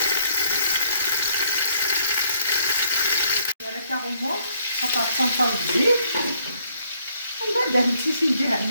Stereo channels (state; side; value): inverted; both; correlation -0.69